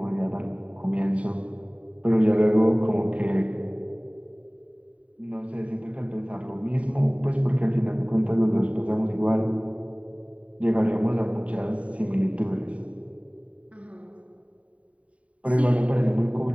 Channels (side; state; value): left; late; 0.066 ms